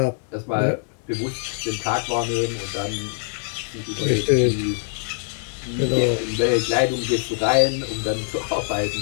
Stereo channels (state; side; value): silent; right; digital silence